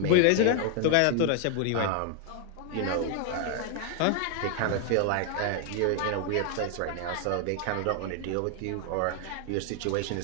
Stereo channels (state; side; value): different; both; correlation 0.00